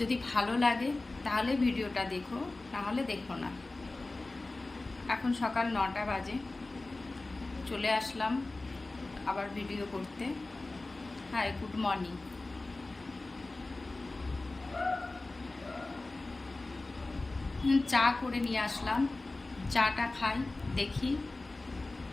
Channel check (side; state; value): right; quieter; 3.1 dB